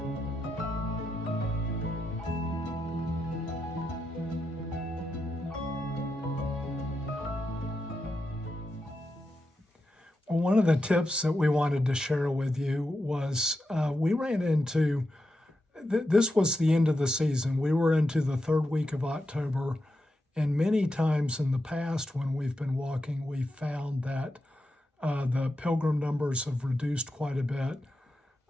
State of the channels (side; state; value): both; normal; correlation 0.87